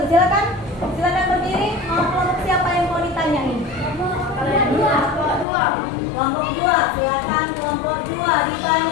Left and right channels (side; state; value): right; drops out; at 5.5 s